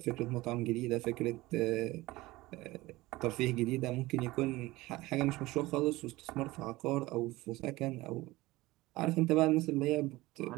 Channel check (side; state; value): left; quieter; 19.5 dB